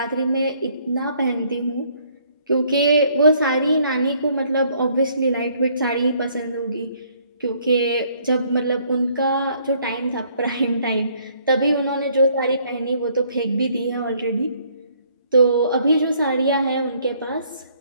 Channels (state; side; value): inverted; both; correlation -0.64